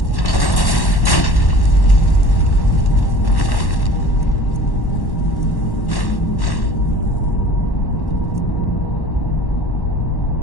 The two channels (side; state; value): right; late; 1.1 ms